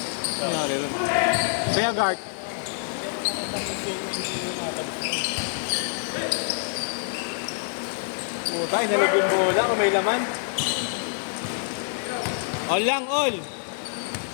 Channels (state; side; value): silent; right; 57 dB below the other